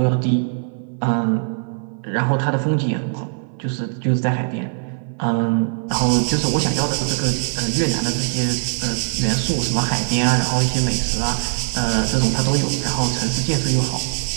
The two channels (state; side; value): silent; left; 56 dB below the other